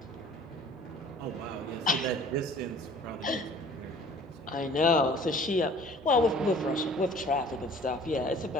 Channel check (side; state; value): both; normal; correlation 0.50